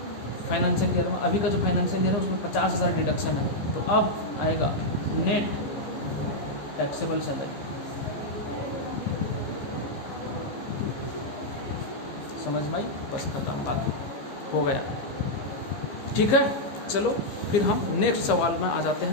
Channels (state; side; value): late; right; 14 ms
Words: फाइनेंशियल ईयर में, अभी का जो फाइनेंशियल ईयर है उसमें 50,000 डिडक्शन है। तो अब आएगा नेट टैक्सेबल सैलरी। समझ में आई, बस खत्म, बात हो गया। ठीक है, चलो फिर हम नेक्स्ट सवाल में आ जाते